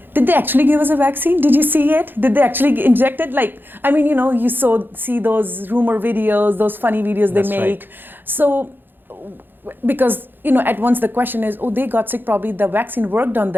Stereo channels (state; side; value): late; left; 0.096 ms